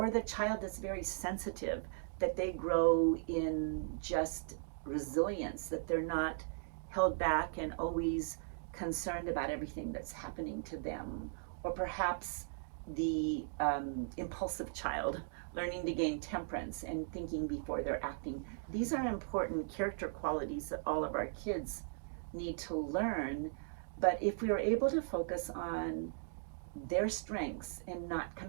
the child that's very sensitive, that they grow in just resilience, that they're not held back and always concerned about everything that's happening to them. Or perhaps the impulsive child learning to gain temperance and thinking before they're acting. These are important character qualities that all of our kids need to learn. But if we are able to focus on their strengths and not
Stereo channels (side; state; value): left; silent; digital silence